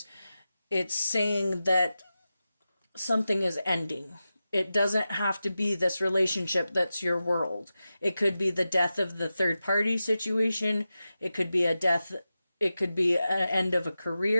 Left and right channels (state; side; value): inverted; both; correlation -0.92